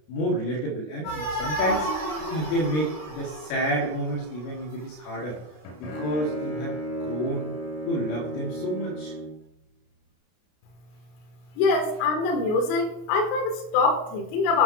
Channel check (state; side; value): late; right; 33 ms